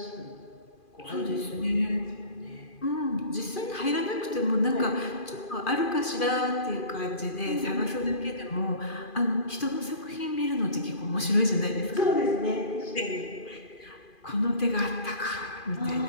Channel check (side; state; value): right; late; 2.4 ms